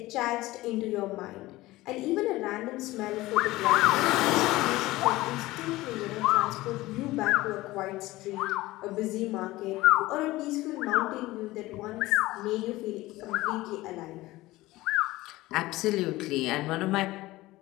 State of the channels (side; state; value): right; quieter; 18.4 dB